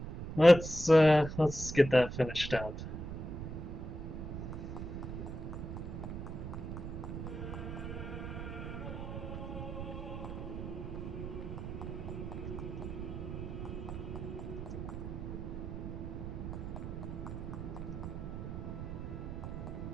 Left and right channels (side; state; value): right; noise; rumble, 6 dB below the sound